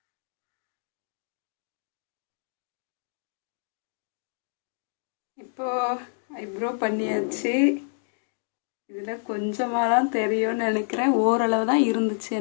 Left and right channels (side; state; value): right; silent; digital silence